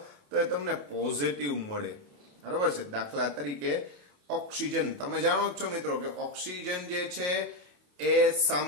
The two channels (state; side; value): late; left; 28 ms